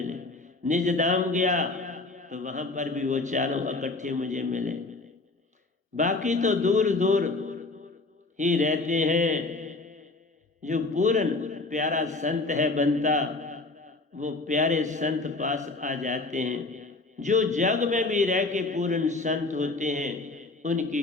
निज धाम गया तो वहां पर भी वो 4 इकट्ठे मुझे मिले। बाकी तो दूर दूर ही रहते हैं। जो पूर्ण प्यारा संत है बनता, वो प्यारे संत पास आ जाते हैं। जो जग में भी रह के पूर्ण संत होते हैं, उनकी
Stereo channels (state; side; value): quieter; right; 3.4 dB